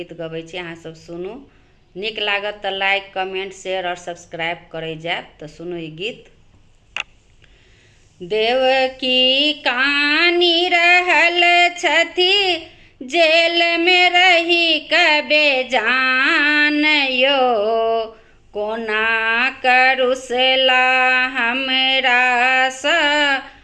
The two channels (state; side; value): identical; both; correlation 1.00